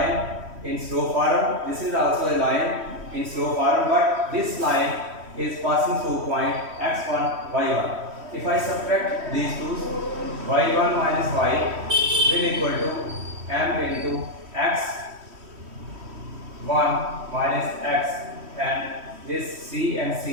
in slope form. This is also a line in slope form, but this line is passing through point x1 y1. If I subtract these two, y1 minus y will equal to m into x1 minus x, and this c and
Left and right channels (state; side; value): late; left; 3.1 ms